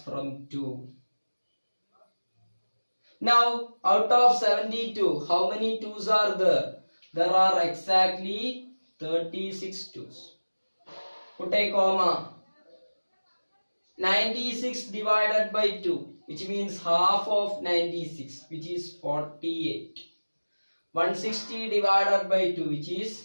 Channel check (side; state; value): both; inverted; correlation -1.00